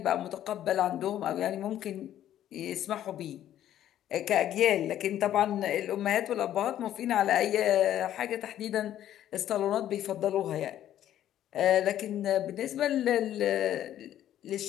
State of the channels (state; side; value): quieter; right; 11.7 dB